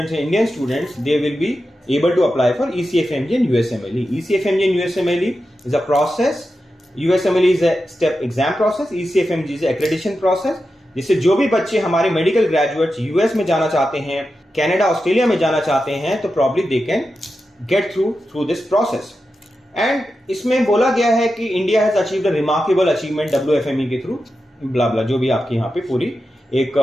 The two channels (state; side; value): normal; both; correlation 0.90